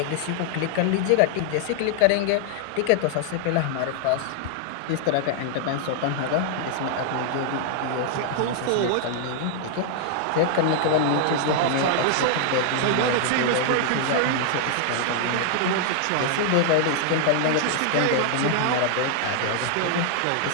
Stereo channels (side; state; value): both; different; correlation -0.01